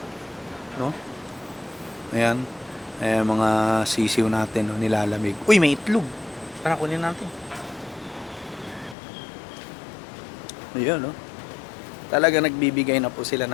no? Ayan, mga sisiw natin, no, nilalamig. Uy, may itlog, tara kunin natin. Ayun, no? Talaga nagbibigay na po sila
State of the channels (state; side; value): drops out; right; at 9.0 s